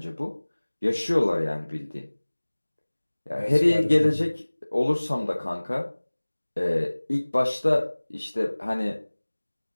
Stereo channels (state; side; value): inverted; both; correlation -1.00